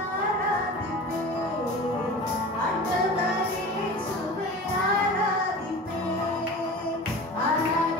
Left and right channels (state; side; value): normal; both; correlation 0.36